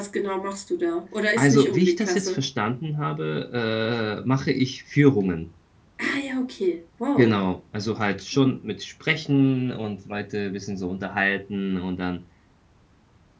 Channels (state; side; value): identical; both; correlation 1.00